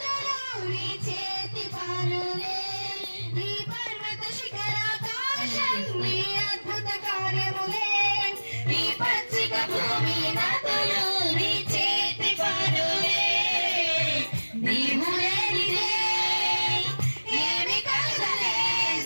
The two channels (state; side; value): inverted; both; correlation -1.00